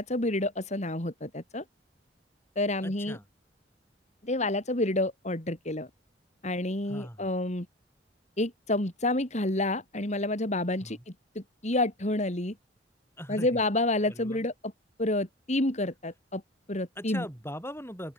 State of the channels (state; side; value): normal; both; correlation 0.31